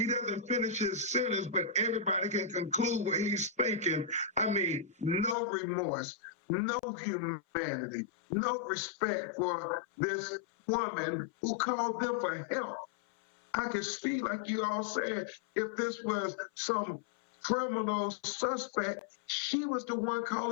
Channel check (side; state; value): right; drops out; at 5.4 s